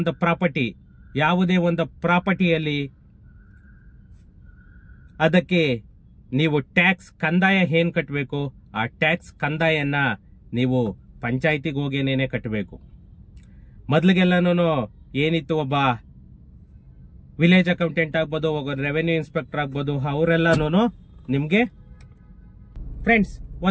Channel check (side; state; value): both; identical; correlation 1.00